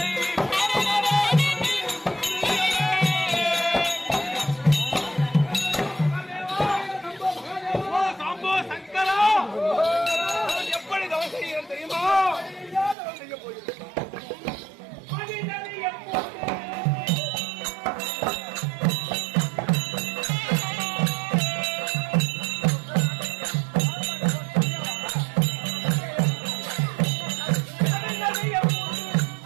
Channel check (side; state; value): left; drops out; at 13.0 s